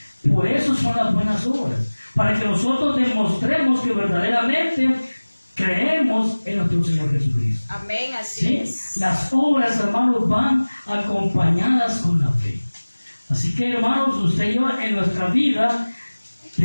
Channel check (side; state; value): both; inverted; correlation -1.00